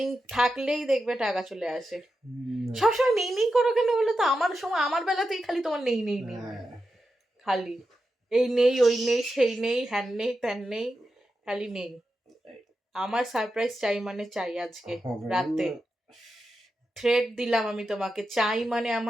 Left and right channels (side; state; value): both; normal; correlation 0.89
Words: থাকলেই দেখবে টাকা চলে আসে। সবসময় নেই নেই করো কেন বলো তো? আমার সময়, আমার বেলাতেই খালি তোমার নেই নেই নেই, খালি এই নেই ওই নেই সেই নেই হ্যান নেই ত্যান নেই, খালি নেই। আমার সারপ্রাইজ চাই মানে চাই, আজকে রাতে থ্রেড দিলাম আমি তোমাকে, চাই মানে